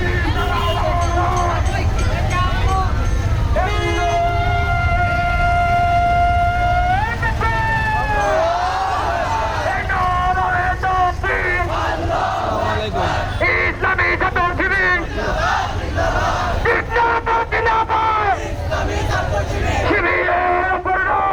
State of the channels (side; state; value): both; identical; correlation 1.00